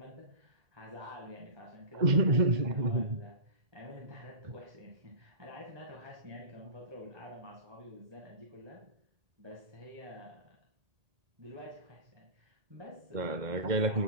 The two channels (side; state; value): left; late; 1.8 ms